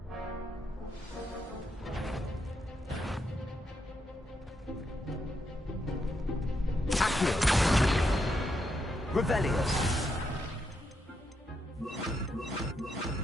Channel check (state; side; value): normal; both; correlation 0.81